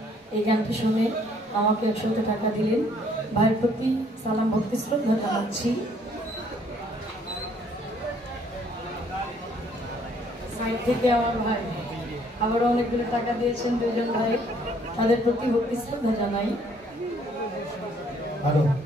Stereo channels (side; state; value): both; normal; correlation 0.63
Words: এই গানটি শুনে আমাকে 100 টাকা দিলেন। ভাইয়ের প্রতি সালাম ভক্তি শ্রদ্ধা জানাচ্ছি। সাইড থেকে আমার ভাই আবারও অনেকগুলো টাকা দিয়েছেন, দুজন ভাই, তাদের প্রতি ভক্তি শ্রদ্ধা জানাই। হ্যালো,